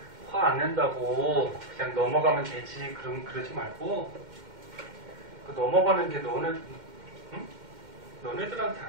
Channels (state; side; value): late; left; 2.1 ms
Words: 화 안 낸다고 그냥 넘어가면 되지. 그러지 말고 그 넘어가는 게 응? 너네들한테